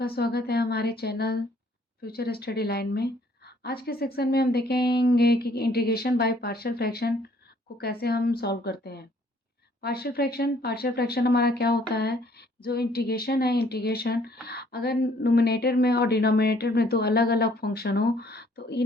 स्वागत है हमारे चैनल फ्यूचर स्टडी लाइन में। आज के सेक्शन में हम देखेंगे कि इंटीग्रेशन बाय पार्शियल फ्रैक्शन को कैसे हम सॉल्व करते हैं। पार्शियल फ्रैक्शन हमारा क्या होता है, जो इंटीग्रेशन है, इंटीग्रेशन अगर नुमिनेटर में और डिनोमिनेटर में दो अलग अलग फंक्शन हो तो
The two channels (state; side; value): normal; both; correlation 0.62